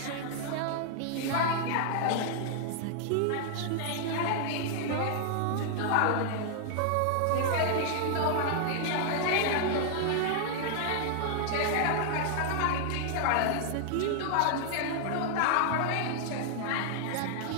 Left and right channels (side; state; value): both; different; correlation -0.01